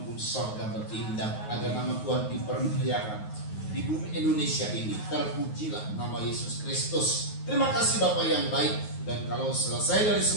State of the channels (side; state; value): right; late; 9.4 ms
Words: sorga bertindak agar nama Tuhan dipermuliakan di bumi Indonesia ini. Terpujilah nama Yesus Kristus. Terima kasih Bapak yang baik. Dan kalau selesai dari